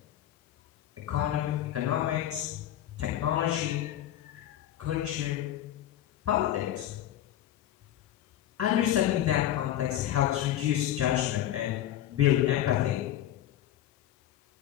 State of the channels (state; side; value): quieter; right; 12.2 dB